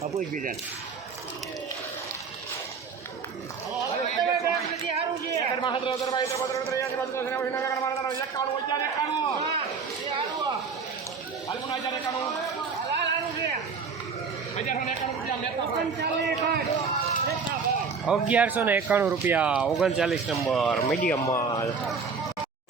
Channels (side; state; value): left; quieter; 5.3 dB